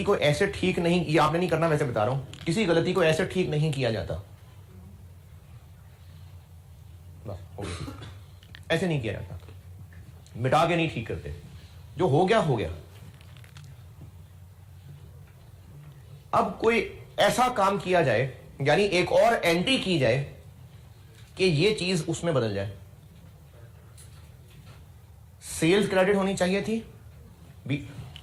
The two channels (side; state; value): both; identical; correlation 1.00